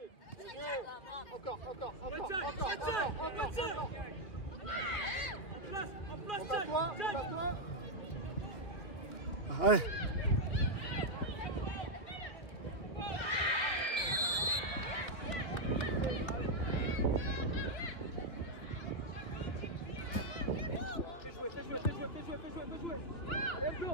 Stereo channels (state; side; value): late; right; 3.1 ms